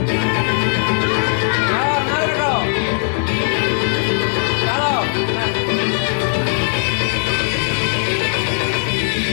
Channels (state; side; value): silent; right; 62 dB below the other